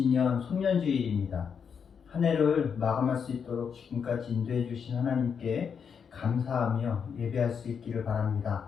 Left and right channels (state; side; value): quieter; right; 6.8 dB